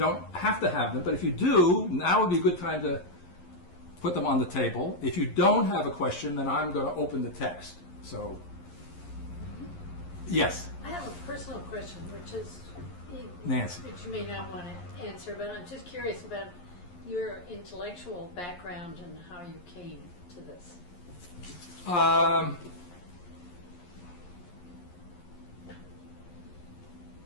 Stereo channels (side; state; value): right; late; 11 ms